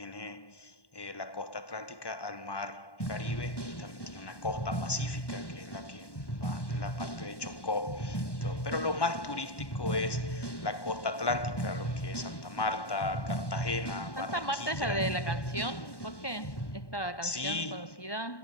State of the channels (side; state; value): right; late; 1.1 ms